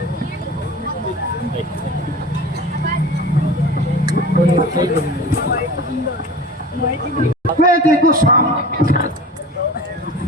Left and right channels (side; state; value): both; normal; correlation 0.37